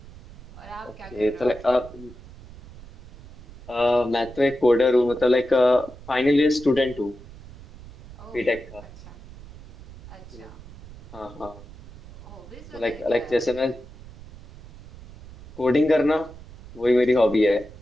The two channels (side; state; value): right; noise; rumble, 18 dB below the sound